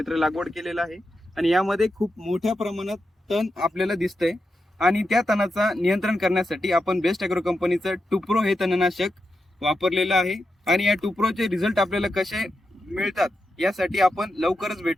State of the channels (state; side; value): normal; both; correlation 0.87